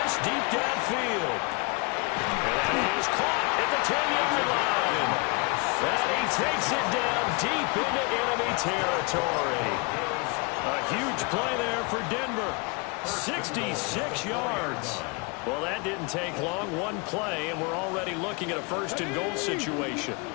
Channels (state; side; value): quieter; right; 30.5 dB